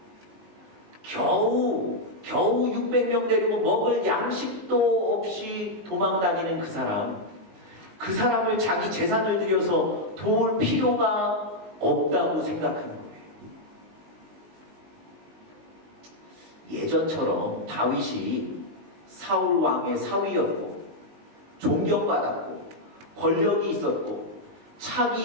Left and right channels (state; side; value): late; left; 19 ms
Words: 겨우 600명 데리고 먹을 양식도 없이 도망다니는 그 사람을 자기 재산을 들여서 도울 필요가 없다고 생각하는 거예요. 예전처럼 다윗이 사울 왕의 사위였고 존경받았고 권력이 있었고